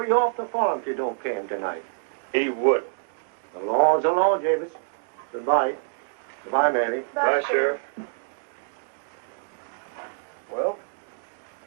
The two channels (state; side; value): silent; left; digital silence